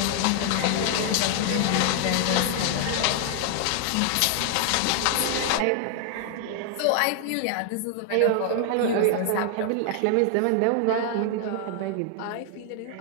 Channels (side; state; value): both; different; correlation 0.00